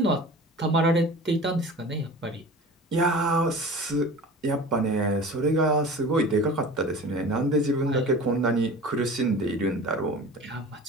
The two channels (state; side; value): normal; both; correlation 0.38